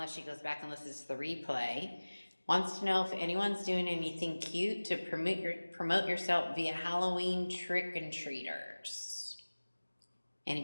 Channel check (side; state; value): both; inverted; correlation -1.00